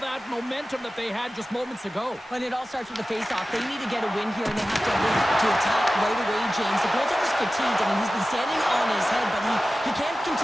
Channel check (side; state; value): both; normal; correlation 0.95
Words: momentum that they had just moments ago. But it all starts with the face-off. They need to get a win here, and they have to win to attack right away, James. The goaltender's fatigued. I mean, he's been standing on his head, but he can't